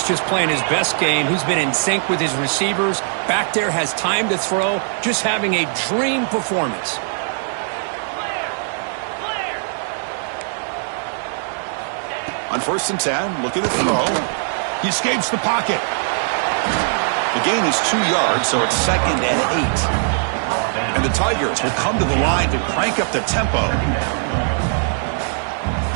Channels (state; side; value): silent; left; digital silence